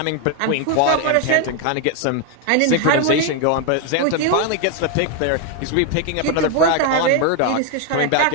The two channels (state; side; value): different; both; correlation 0.01